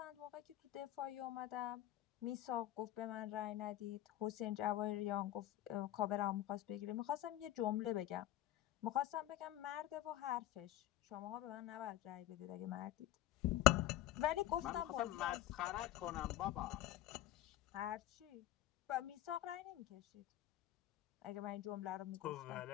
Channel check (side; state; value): right; quieter; 14.1 dB